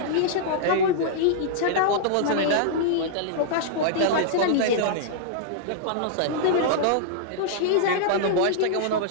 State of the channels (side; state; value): both; different; correlation -0.01